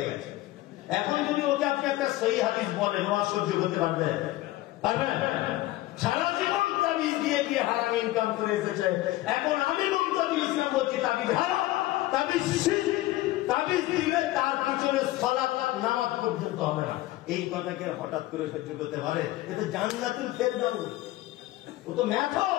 গেছে। এখন যদি ওকে আপনি একটা সহি হাদিস বলেন, ও সহ্য করতে পারবে? ইনকাম করে এসেছে। এখন আমি মুমতাজুল ইসলাম বলছি তাবিজ হারাম, তাবিজ শিরক, তাবিজ দিলে তার পিছনে সালাত নামাজ পর্যন্ত হবে না। এই কথাকে হঠাৎ করে সহ্য করতে পারে? এটা জান্নাতুল ফেরদাউস, ও তো মেথড।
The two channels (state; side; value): quieter; right; 17.1 dB